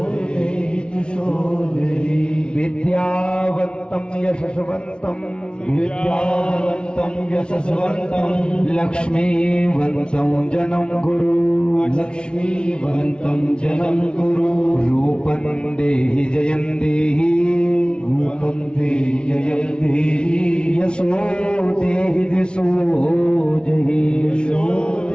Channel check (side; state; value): right; late; 0.056 ms